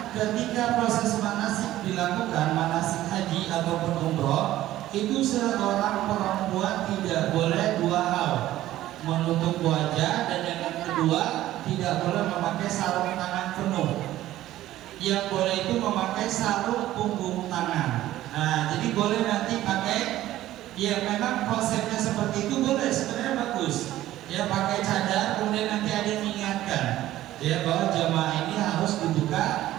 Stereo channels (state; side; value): quieter; left; 14.4 dB